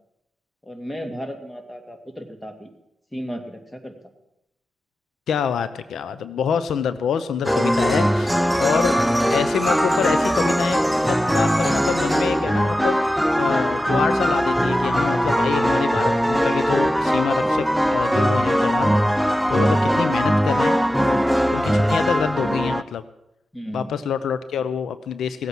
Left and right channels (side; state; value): both; normal; correlation 0.92